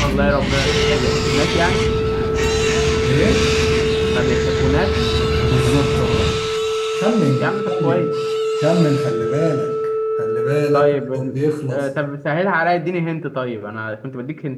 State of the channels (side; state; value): both; identical; correlation 1.00